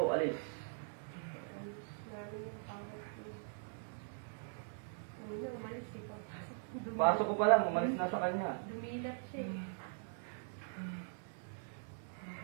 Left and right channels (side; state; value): left; silent; digital silence